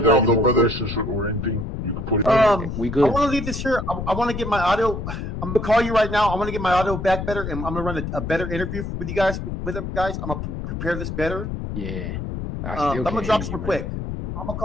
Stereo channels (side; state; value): left; noise; rumble, 5 dB below the sound